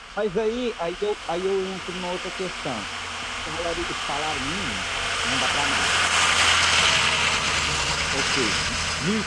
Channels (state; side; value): identical; both; correlation 1.00